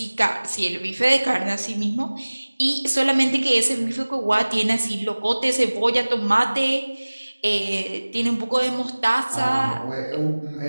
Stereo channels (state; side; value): inverted; both; correlation -1.00